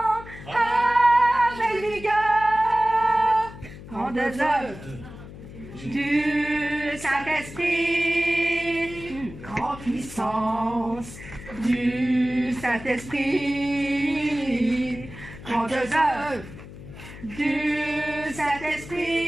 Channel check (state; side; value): noise; left; hum, 15 dB below the sound